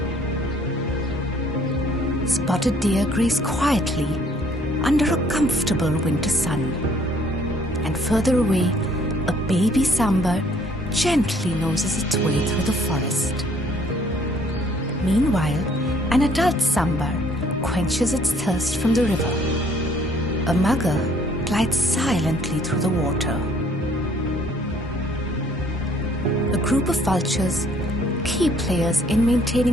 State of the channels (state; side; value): normal; both; correlation 0.61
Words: Spotted deer graze quietly under a comfortable winter sun, and further away, a baby sambar gently noses its way through the forest. Meanwhile, an adult sambar quenches its thirst from the river. A mugger glides silently through the water. A group of vultures, key players in